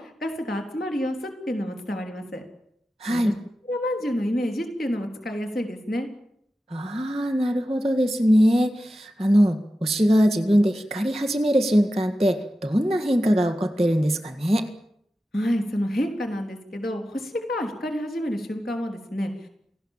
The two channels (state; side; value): normal; both; correlation 0.92